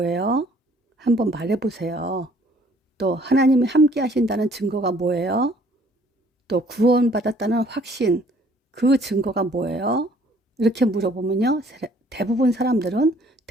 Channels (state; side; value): normal; both; correlation 0.59